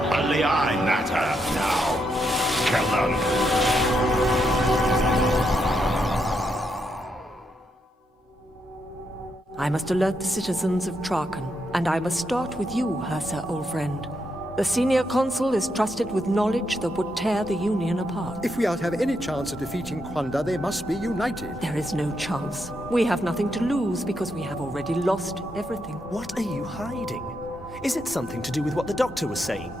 Only I matter now. Kill them. I must alert the citizens of Traken, and I must start with you, Hersa, old friend. The senior consul is trusted with knowledge that would tear the Union apart. If we are to have any chance of defeating Quandar, they must be united. There is no chance. We have nothing to lose because we have already lost everything. What are you hiding? Is it something to do with what the doctor was saying?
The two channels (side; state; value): both; normal; correlation 0.80